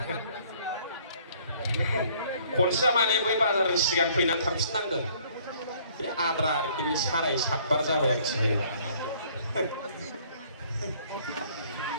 खनसेया माने बै बाजारनि सिगां फैनानै थांफिननांदों। बे आद्रा आरोखि बे 7:30 बार जाबाय आरोखि बे।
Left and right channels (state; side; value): inverted; both; correlation -0.59